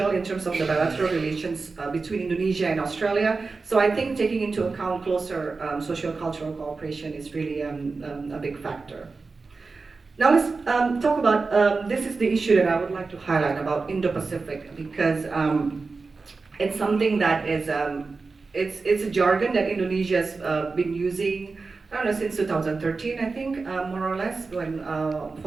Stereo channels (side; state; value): left; quieter; 4.1 dB